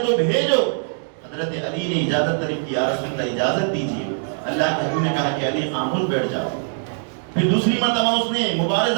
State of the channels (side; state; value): left; silent; digital silence